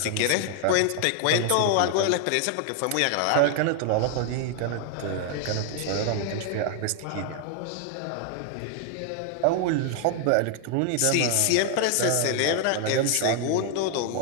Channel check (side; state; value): both; different; correlation 0.00